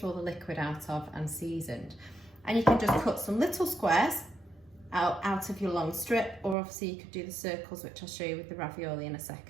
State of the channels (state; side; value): drops out; left; at 6.6 s